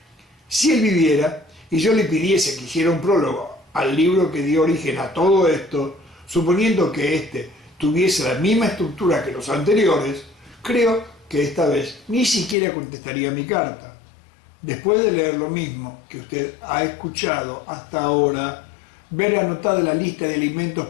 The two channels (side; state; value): right; drops out; at 12.6 s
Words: Si él viviera y yo le pidiese que hiciera un prólogo al libro que dio origen a todo esto, suponiendo que éste tuviese la misma estructura que los anteriores, creo que esta vez ni siquiera contestaría mi carta. Después de leer lo mismo que usted ha escuchado hasta ahora, ver anotada la lista de alimentos